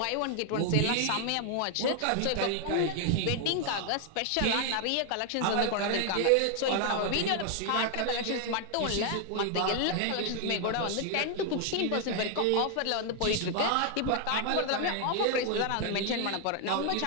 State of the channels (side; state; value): both; different; correlation 0.00